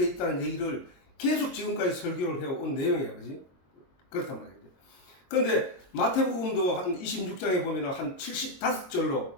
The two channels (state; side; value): late; right; 22 ms